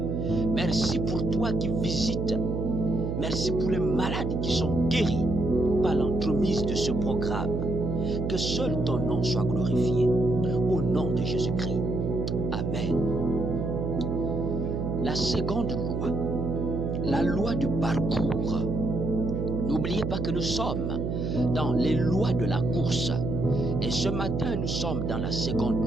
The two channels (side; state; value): right; noise; hum, 2 dB below the sound